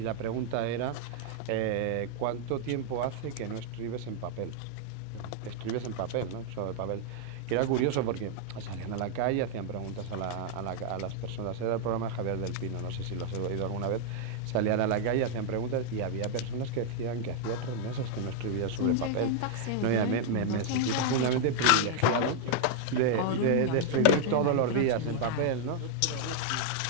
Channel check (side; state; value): both; different; correlation -0.01